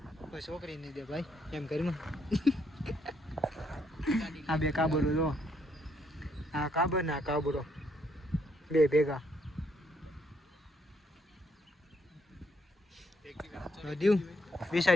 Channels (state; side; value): normal; both; correlation 0.72